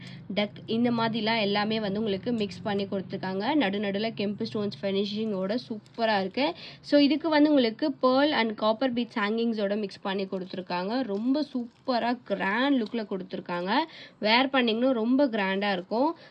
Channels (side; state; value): both; identical; correlation 1.00